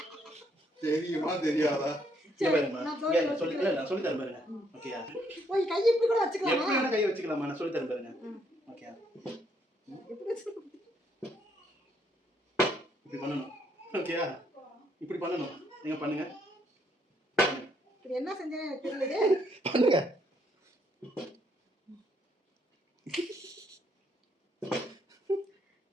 தெரியுமா தெரியாதா? நான் சொல்லி தரேன் பாருங்க. ஓகேயா? ஓய் கை இப்படி கூட வச்சுக்கலாமா? எப்படி வேணா கை வச்சுக்கலாமா? நான் சொல்லி தரேன் பாருங்க. ஓகேயா? எப்படி வச்சுக்கலாம்? இப்படி பண்ணணும். ஓகேயா? இப்படி பண்ணணும். நீங்க பண்ணுங்க. இது என்ன செஞ்சேன்னு எனக்கு தெரியலையே. பண்ணுங்க.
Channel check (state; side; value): normal; both; correlation 0.72